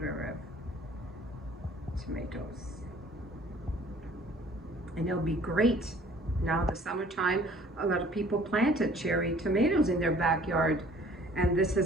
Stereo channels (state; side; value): normal; both; correlation 0.53